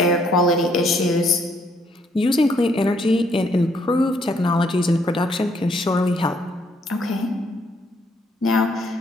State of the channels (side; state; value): both; normal; correlation 0.69